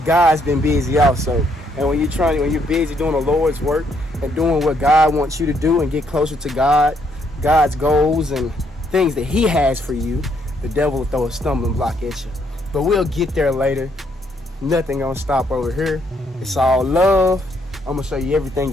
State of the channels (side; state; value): both; normal; correlation 0.72